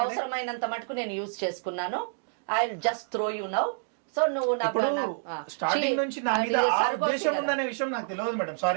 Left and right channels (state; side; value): silent; left; digital silence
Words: అవసరమైనంత మటుకు నేను యూజ్ చేసుకున్నాను. I just throw you now. So నువ్వు స్టార్టింగ్ నుంచి నా మీద ఆ ఉద్దేశం ఉందనే విషయం నాకు తెలియదు మేడం.